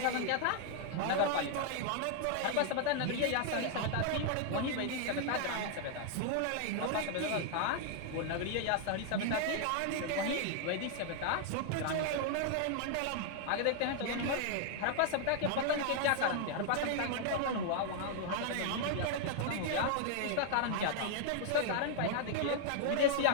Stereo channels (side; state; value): both; different; correlation 0.00